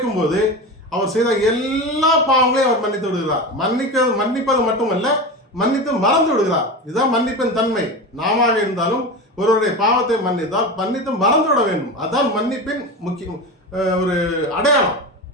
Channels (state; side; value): normal; both; correlation 0.25